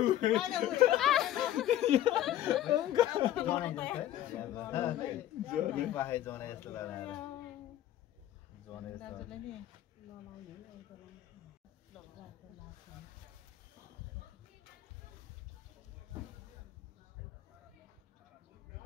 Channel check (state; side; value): quieter; right; 12.7 dB